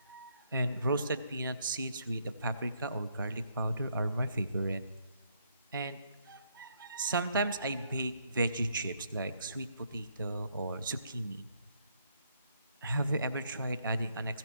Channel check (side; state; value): both; inverted; correlation -0.72